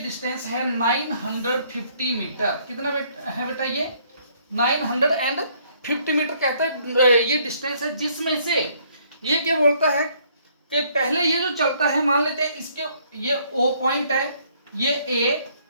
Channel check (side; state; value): both; inverted; correlation -0.65